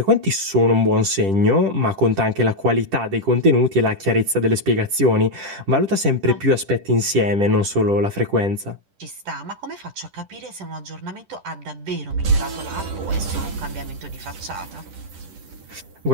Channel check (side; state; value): left; late; 10 ms